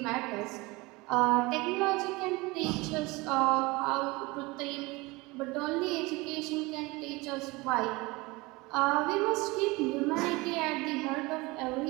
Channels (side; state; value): left; quieter; 23.4 dB